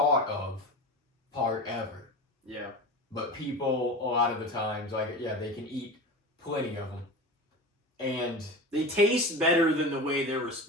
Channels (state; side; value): normal; both; correlation 0.29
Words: of part ever. Yeah. But people, a lot of the times, like, yeah, they can eat plenty of them. And They taste better than the way they're